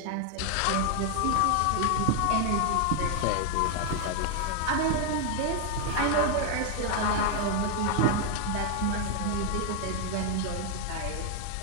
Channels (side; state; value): both; different; correlation 0.00